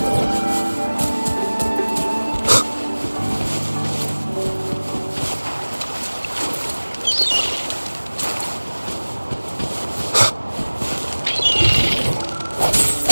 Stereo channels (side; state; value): both; inverted; correlation -1.00